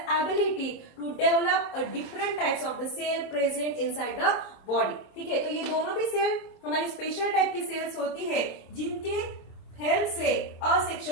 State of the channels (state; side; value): late; right; 26 ms